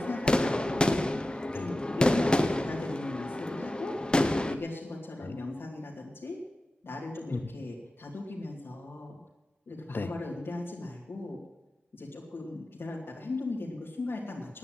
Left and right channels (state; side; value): normal; both; correlation 0.94